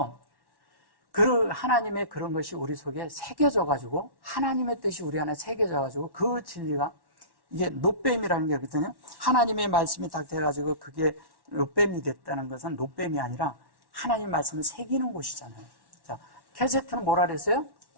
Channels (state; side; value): late; left; 1.1 ms